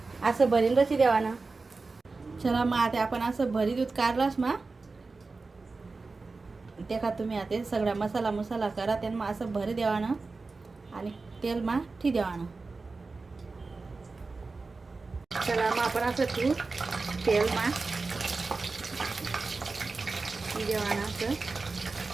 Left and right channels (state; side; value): quieter; left; 3.9 dB